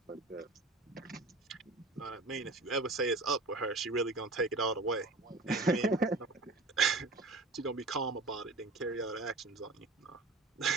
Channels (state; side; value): quieter; left; 3.0 dB